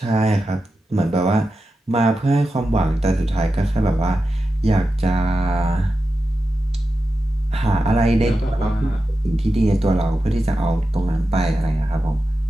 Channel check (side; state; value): both; normal; correlation 0.91